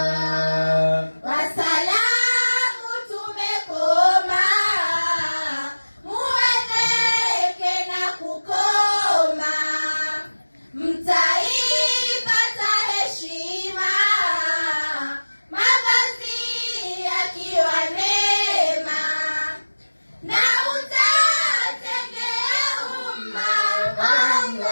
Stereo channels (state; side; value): inverted; both; correlation -1.00